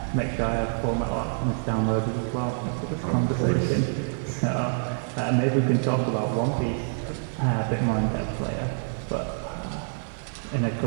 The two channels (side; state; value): left; silent; digital silence